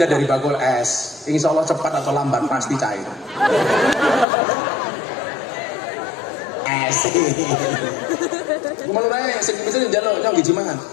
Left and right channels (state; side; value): drops out; right; at 4.2 s